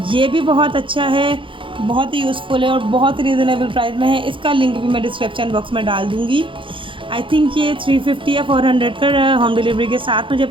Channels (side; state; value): left; late; 0.25 ms